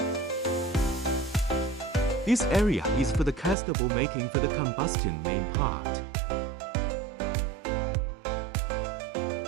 This area is for the castable making for the combustion main part,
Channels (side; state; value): left; drops out; at 3.6 s